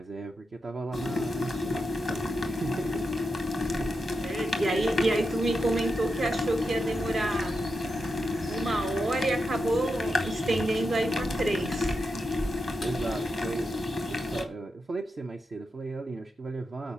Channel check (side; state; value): both; normal; correlation 0.87